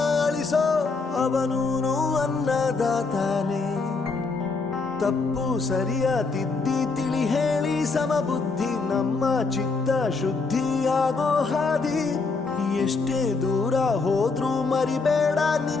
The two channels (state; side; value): quieter; right; 4.2 dB